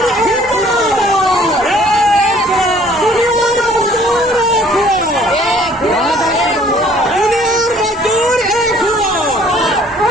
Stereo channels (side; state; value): both; normal; correlation 0.57